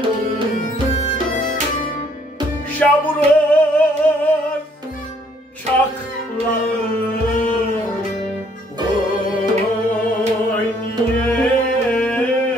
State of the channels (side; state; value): both; normal; correlation 0.64